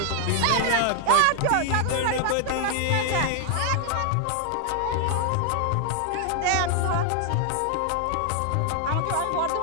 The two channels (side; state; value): both; different; correlation 0.00